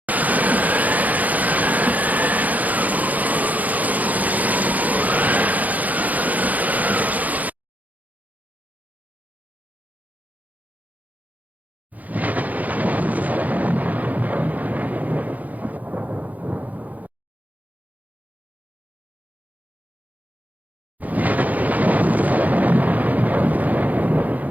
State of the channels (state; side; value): late; left; 0.078 ms